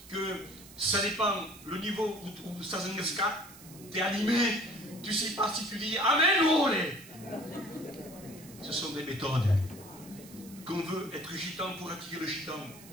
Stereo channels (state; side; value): noise; right; hiss, 19 dB below the sound